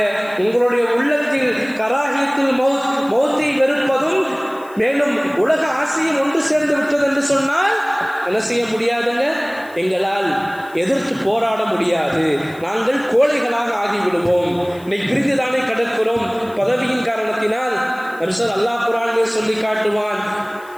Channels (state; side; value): noise; left; hiss, 25 dB below the sound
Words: உங்களுடைய உள்ளத்தில் கராஹியத்துல் மௌத்தை வெறுப்பதும் மேலும் உலக ஆசையும் ஒன்று சேர்ந்து விட்டது என்று சொன்னால் என்ன செய்ய முடியாதுங்க? எங்களால் எதிர்த்து போராட முடியாது. நாங்கள் கோழைகளாக ஆகிவிடுவோம். இன்னைக்கு பிரிந்துதானே கிடக்கிறோம் பதவியின் காரணத்தினால். அல்லாஹ் குர்ஆனிலே சொல்லி காட்டுவான்,